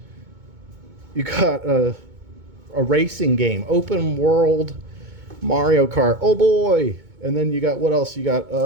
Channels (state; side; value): late; left; 2.2 ms